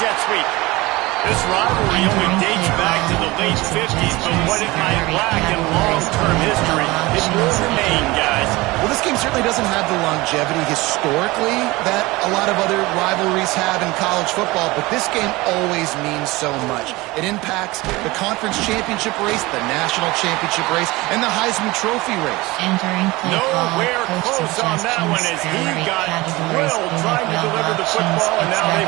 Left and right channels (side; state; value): left; quieter; 21.3 dB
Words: sweep. This rivalry only dates back to the late 50s, but what it might lack in long-term history, it will remain, guys. Well, this game certainly doesn't have the longevity historically that a lot of other rivalries have in college football, but this game always means so much. It impacts the conference championship race, the national championship race, and the Heisman Trophy race. Nowhere close on that one as he got drilled trying to deliver the football, and now they